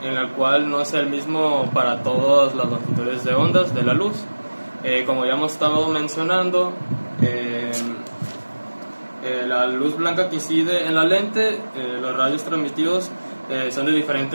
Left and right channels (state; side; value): inverted; both; correlation -1.00